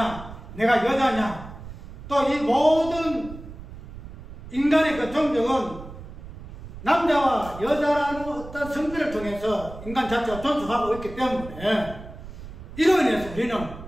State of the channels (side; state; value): right; noise; rumble, 13 dB below the sound